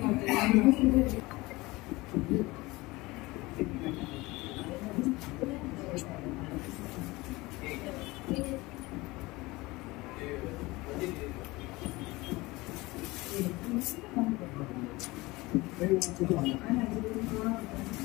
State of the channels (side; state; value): right; quieter; 21.6 dB